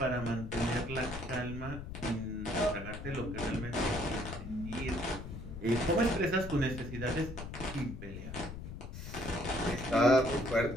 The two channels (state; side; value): noise; left; rumble, 9 dB below the sound